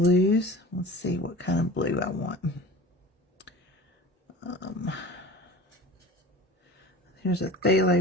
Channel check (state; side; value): normal; both; correlation 0.39